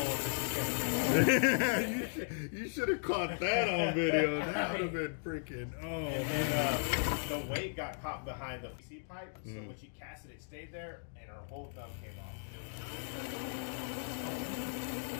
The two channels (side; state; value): right; silent; digital silence